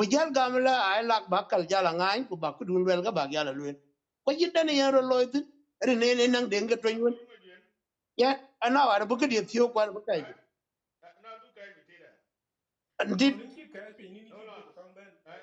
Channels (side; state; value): both; identical; correlation 1.00